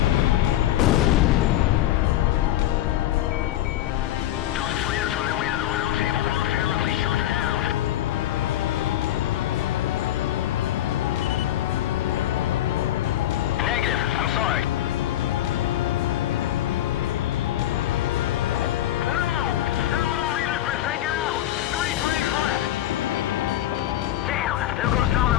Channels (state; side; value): quieter; right; 13.2 dB